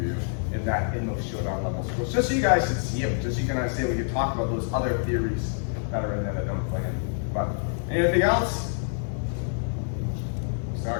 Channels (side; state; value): right; silent; digital silence